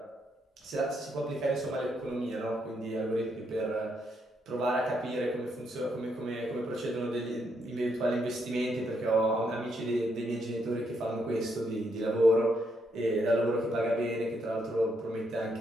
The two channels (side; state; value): both; normal; correlation 0.77